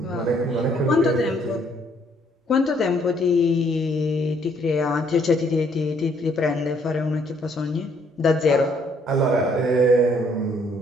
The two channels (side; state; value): both; normal; correlation 0.66